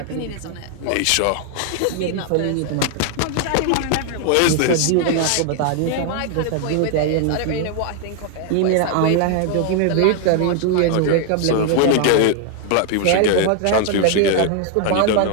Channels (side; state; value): both; different; correlation 0.00